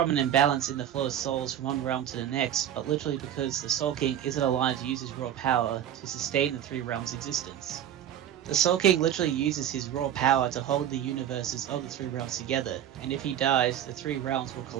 an imbalance in the flow of souls from one realm to the next, but literally because the Soul King isn't alive to use his raw power to sustain the three realms' existence. The Soul King literally uses his raw power to hold the universes of the three realms together, and if he dies, the three realms will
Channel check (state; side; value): quieter; left; 10.6 dB